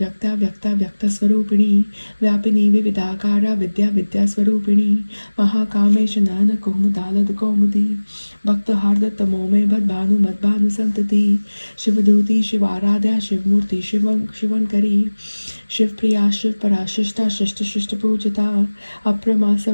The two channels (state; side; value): inverted; both; correlation -1.00